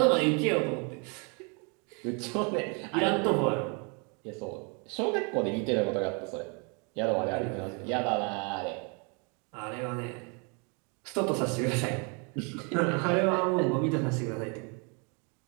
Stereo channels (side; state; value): left; quieter; 34.5 dB